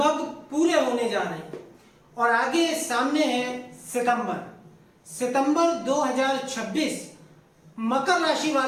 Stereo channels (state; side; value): identical; both; correlation 1.00